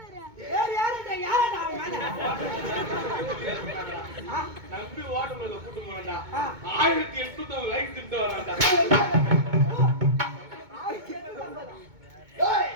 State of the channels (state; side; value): late; left; 2.2 ms